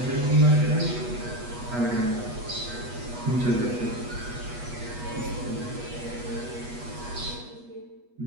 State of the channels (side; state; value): left; late; 8.2 ms